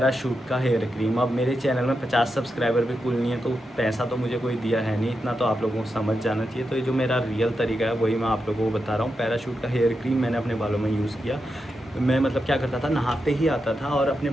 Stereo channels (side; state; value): both; normal; correlation 0.87